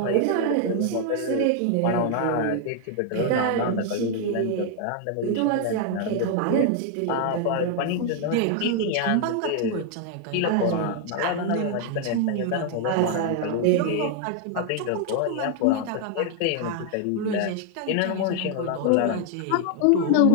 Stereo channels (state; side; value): different; both; correlation 0.00